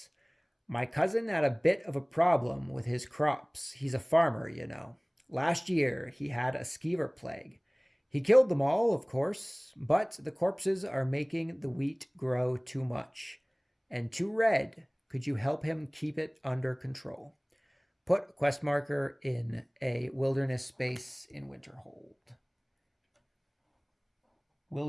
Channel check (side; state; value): both; identical; correlation 1.00